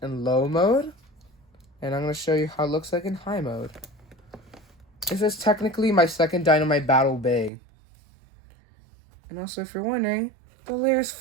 in low mode, and I'm going to show you how it looks like in high mode. This is technically my second Dynamite Battle Bay. And also, if you're wondering, the layer is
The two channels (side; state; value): left; drops out; at 7.5 s